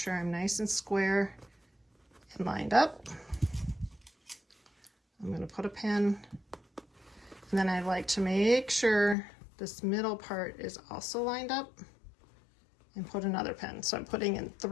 I'm nice and square and lined up. I'm going to put a pin, and then I like to make sure this middle part is also lined up, and put another pin. So I'm putting in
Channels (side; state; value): right; drops out; at 9.2 s